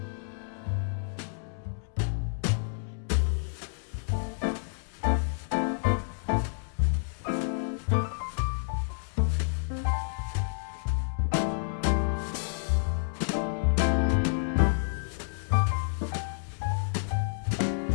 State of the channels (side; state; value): right; silent; digital silence